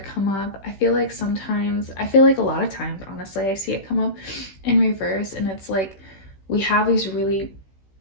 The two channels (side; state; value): right; late; 16 ms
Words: come up. I feel like a lot of times, honestly, I see it come up in reverse, and it's like we have these really